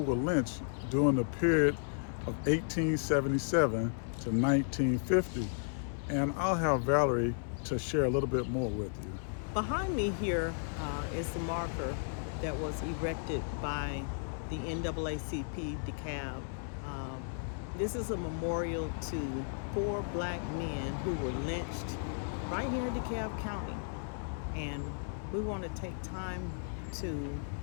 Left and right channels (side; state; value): right; silent; 55 dB below the other